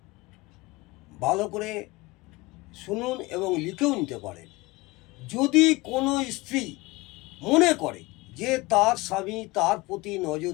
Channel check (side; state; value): right; quieter; 22.4 dB